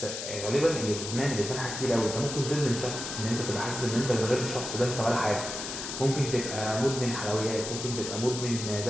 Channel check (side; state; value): left; noise; hiss, 6 dB below the sound